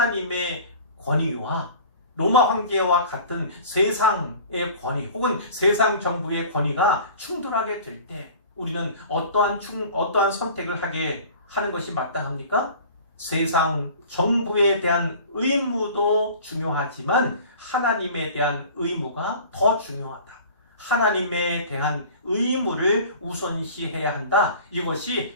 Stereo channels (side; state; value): both; inverted; correlation -0.43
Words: 권위와 로마 황제와 같은 세상의 권위 혹은 세상 정부의 권위가 충돌하게 될 때 우리는 어떠한 선택을 하게 하는 것이 마땅합니까? 세상 정부에 대한 의무도 중요하지만 하나님에 대한 의무가 더 중요하다. 하나님에 대한 의무를 우선시해야 한다. 이것이